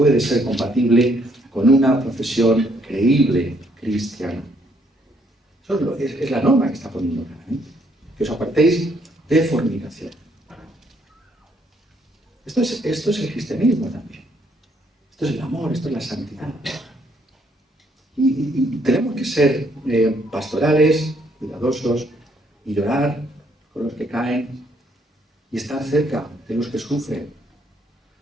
ser compatible con una profesión creíble cristiana. Eso es la norma que está poniendo claramente. Que os apartéis de fornicación. Esto es el cristianismo también. Esto es el amor, esto es la santidad. Y tenemos que ser pastorales, cuidadosos, y llorar con los que caen, y estar cerca de los que sufren.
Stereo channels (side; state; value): both; normal; correlation 0.69